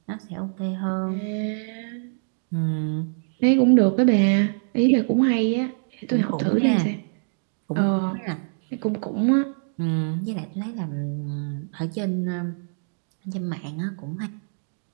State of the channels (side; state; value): left; silent; 62 dB below the other